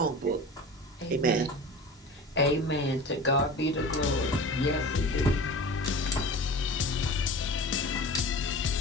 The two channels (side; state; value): both; normal; correlation 0.35